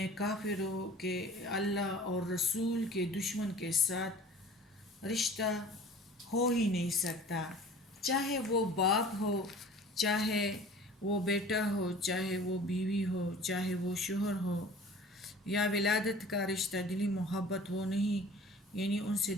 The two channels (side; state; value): both; normal; correlation 0.45